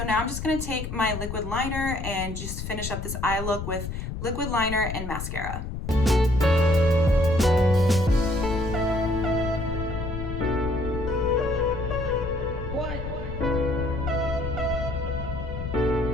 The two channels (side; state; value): left; noise; rumble, 6 dB below the sound